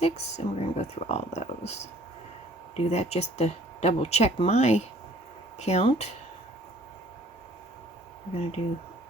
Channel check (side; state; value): both; normal; correlation 0.56